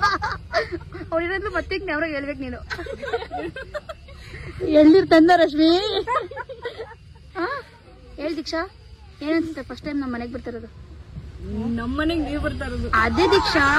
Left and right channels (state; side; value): identical; both; correlation 1.00